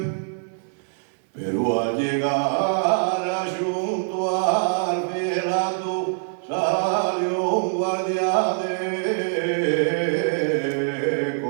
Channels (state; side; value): silent; left; digital silence